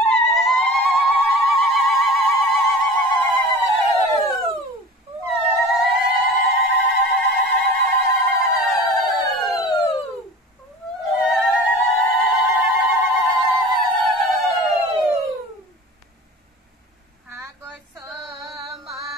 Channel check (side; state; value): both; normal; correlation 0.38